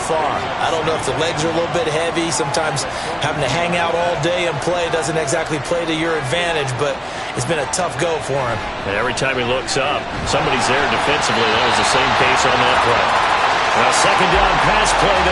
I don't know if the legs are a little bit heavy. Sometimes having to hang out all day and play doesn't exactly play to your advantage, but it's been a tough go for him. And every time he looks up, somebody's there defensively. That was the same case on that play. Now, second down pass play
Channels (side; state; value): both; identical; correlation 1.00